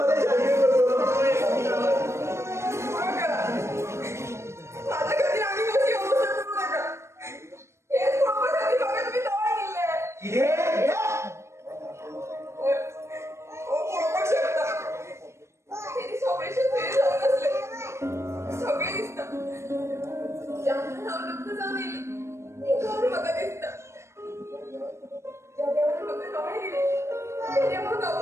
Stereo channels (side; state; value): left; late; 0.13 ms